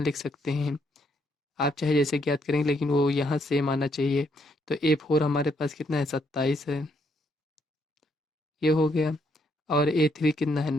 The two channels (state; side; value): normal; both; correlation 0.73